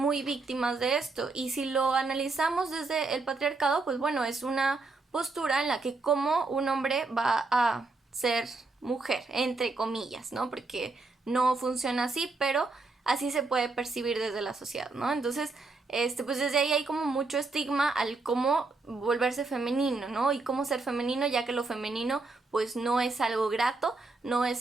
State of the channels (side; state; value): left; quieter; 3.7 dB